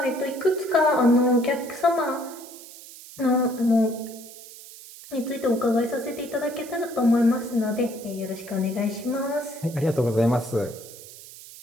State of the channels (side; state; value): right; noise; hiss, 17 dB below the sound